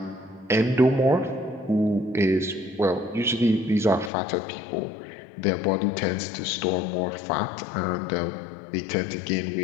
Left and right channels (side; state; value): right; drops out; at 4.1 s